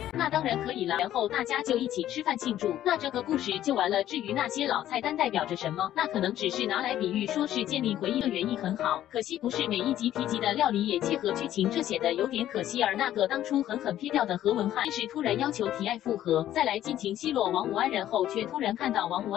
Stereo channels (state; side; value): quieter; right; 12.4 dB